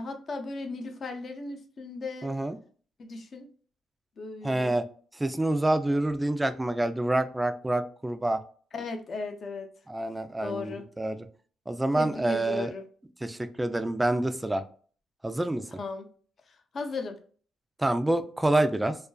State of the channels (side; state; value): both; normal; correlation 0.95